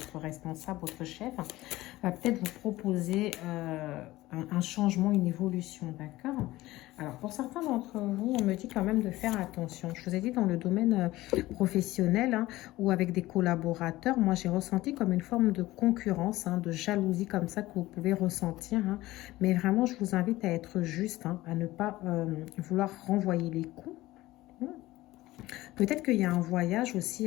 responsable, votre chef, va peut-être vous proposer un changement, une évolution, d'accord? Alors, pour certains d'entre vous, on me dit quand même de faire attention. Je vous ai dit dans le domaine professionnel, hein, ou avec des collaborateurs, moi j'ai ressenti comme une forme de concurrence, hein, de jalousie comme ça que vous pouvez ressentir. Hein. Mais vraiment, je vous invite à être juste, hein, à ne pas vouloir renvoyer les coups. Peut-être qu'il y a un voyage aussi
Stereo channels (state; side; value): quieter; right; 17.6 dB